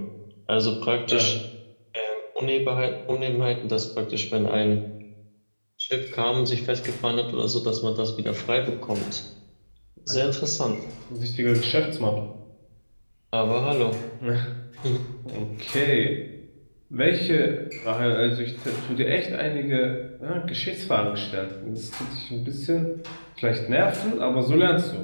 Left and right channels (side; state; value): both; inverted; correlation -1.00